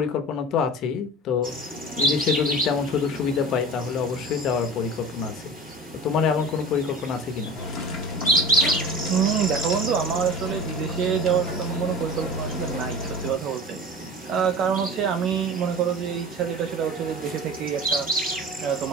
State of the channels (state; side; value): normal; both; correlation 0.35